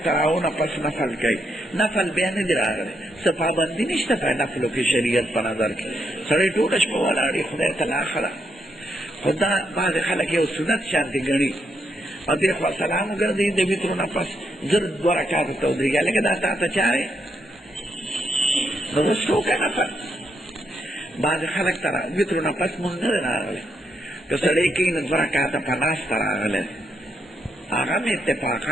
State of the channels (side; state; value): both; normal; correlation 0.79